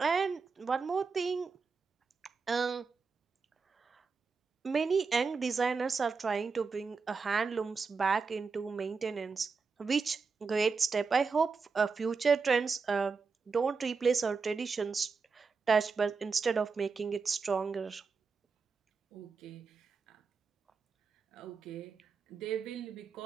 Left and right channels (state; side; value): quieter; left; 4.9 dB